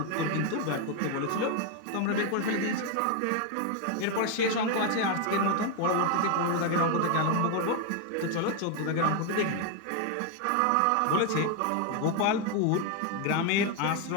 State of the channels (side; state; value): both; different; correlation 0.01